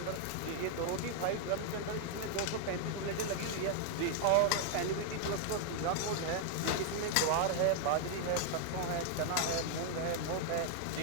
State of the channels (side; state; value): both; different; correlation 0.00